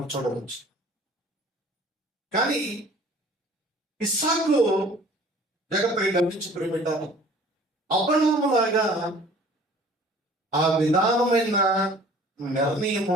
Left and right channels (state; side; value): normal; both; correlation 0.50